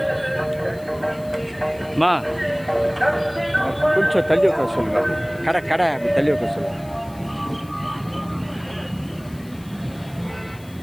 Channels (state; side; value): noise; left; hiss, 24 dB below the sound